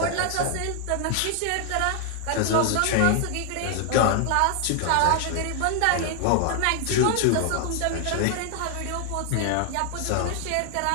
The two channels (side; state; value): both; different; correlation 0.00